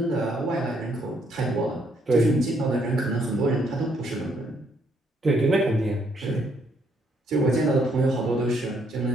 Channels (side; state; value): both; normal; correlation 0.71